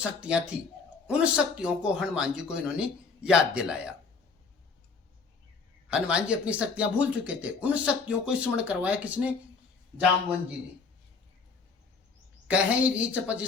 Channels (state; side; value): quieter; right; 4.8 dB